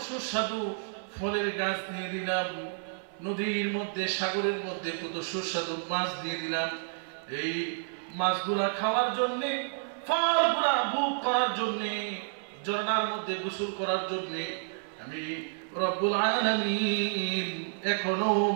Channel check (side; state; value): left; silent; 58 dB below the other